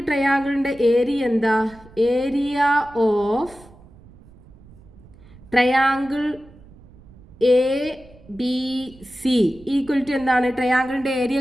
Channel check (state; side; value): noise; right; rumble, 23 dB below the sound